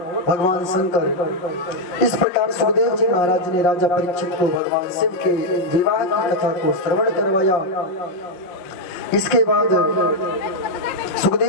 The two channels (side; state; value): right; late; 5.6 ms